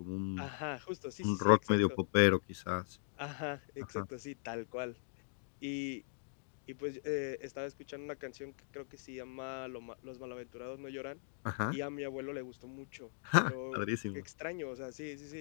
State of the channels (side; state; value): right; silent; digital silence